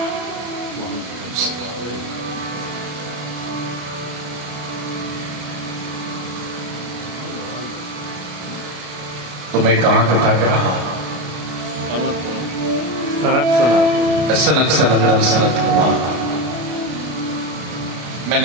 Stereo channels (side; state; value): left; late; 33 ms